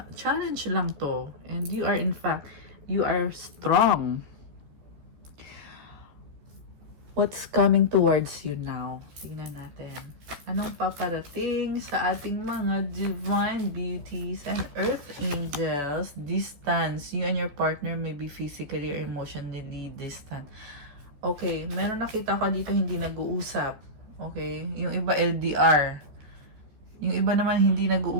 challenge lang to. And you are, in fact, you are strong. What's coming towards you now? Tingnan natin. Anong paparating sa ating mga divine beauties and earth angels? Distance. You and your partner may be physically or emotionally distant. Okay, meron nakita ko dito hindi nag-uusap. Okay, yung iba LDR. Yung iba naman hindi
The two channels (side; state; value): left; late; 14 ms